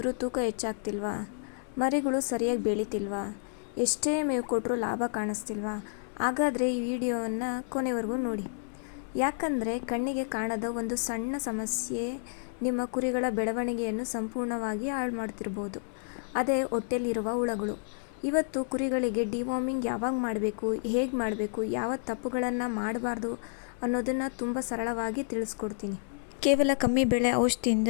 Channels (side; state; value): right; silent; 58 dB below the other